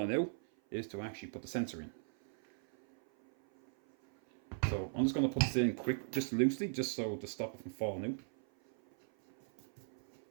out is to actually put the sensor in. So I'm just going to put this in quick, just loosely, just so to stop it from falling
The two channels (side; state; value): left; silent; 52 dB below the other